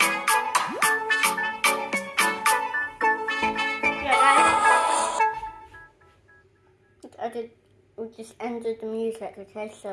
We just ended the music, okay,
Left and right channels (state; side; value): identical; both; correlation 1.00